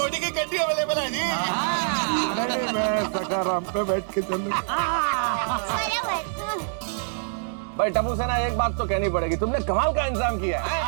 की गड्डी अवेलेबल है जी। नहीं, मैं सखाराम पे बैठ के चलूंगा। भाई टप्पू सेना, एक बात तो कहनी पड़ेगी, तुमने कमाल का इंतजाम किया है।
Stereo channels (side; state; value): left; silent; digital silence